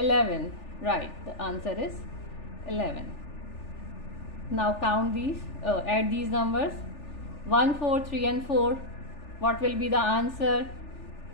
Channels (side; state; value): right; late; 3.4 ms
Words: Right, the answer is 11. Now count these, add these numbers. 1, 4, 3 and 4. What will be the answer?